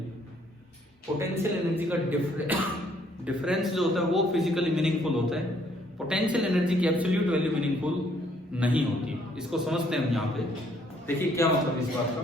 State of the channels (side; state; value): both; normal; correlation 0.65